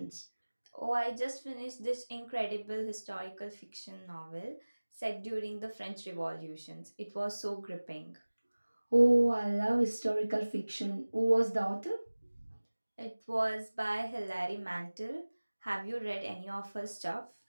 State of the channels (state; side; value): inverted; both; correlation -1.00